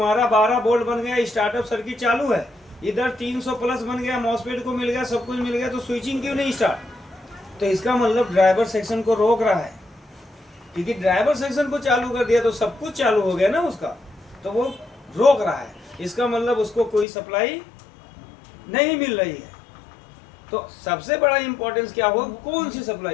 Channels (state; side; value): drops out; right; at 17.1 s